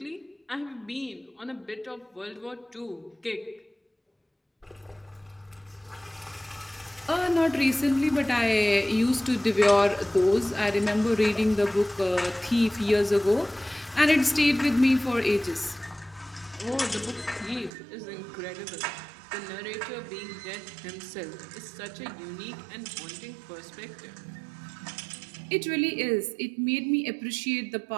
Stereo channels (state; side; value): drops out; left; at 17.7 s